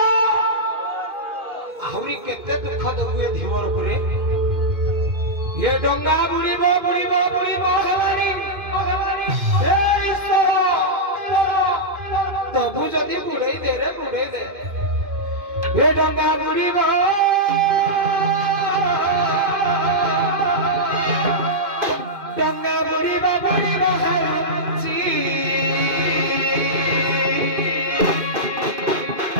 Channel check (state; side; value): late; left; 2.5 ms